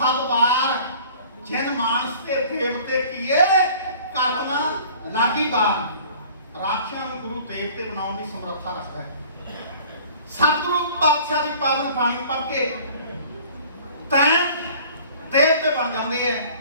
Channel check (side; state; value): both; inverted; correlation -0.48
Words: जिन मानस के देवते किए करना लागी बार। राक्षसां नूं गुरु देवते बनाने की समर्था रखता है। सतगुरु पातशाह की पावन बाणी पढ़ के तैं देवते बन जाते हैं,